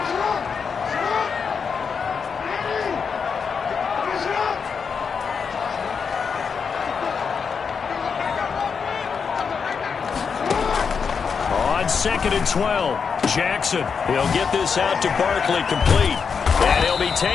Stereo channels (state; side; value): quieter; right; 6.0 dB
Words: On 2nd and 12, Jackson. He'll get this out to Barkley, complete. And he'll be